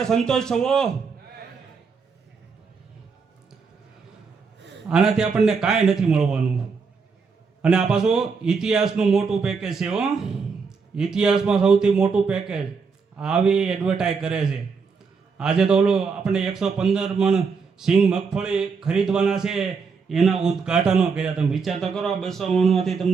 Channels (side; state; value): left; quieter; 5.2 dB